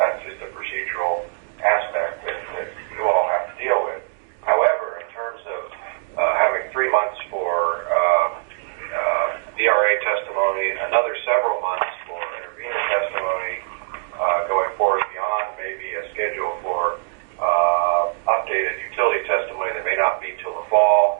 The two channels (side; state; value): left; silent; digital silence